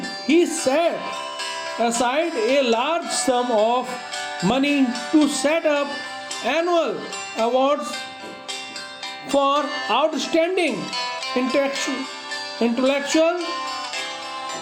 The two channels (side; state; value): both; identical; correlation 1.00